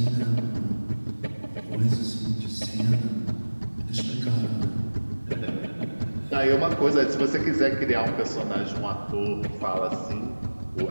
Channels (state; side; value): inverted; both; correlation -1.00